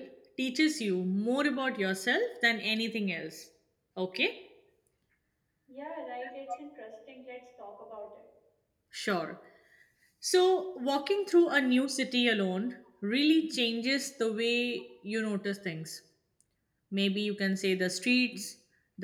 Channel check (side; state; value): both; identical; correlation 1.00